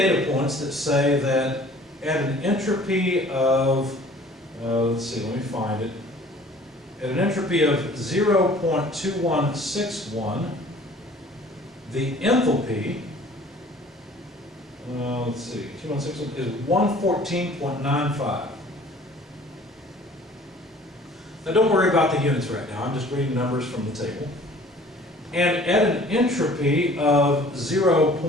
points that say that at an entropy of, let's see, let me find it. At an entropy of 0.2161, the enthalpy, let's see, 2161 is 114.95. Now don't worry about the units right now, I'm just reading numbers from the table. And at an entropy of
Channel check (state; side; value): normal; both; correlation 0.50